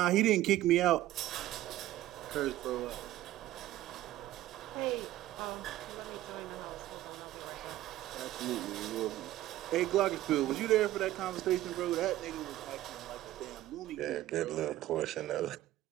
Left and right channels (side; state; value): left; quieter; 14.7 dB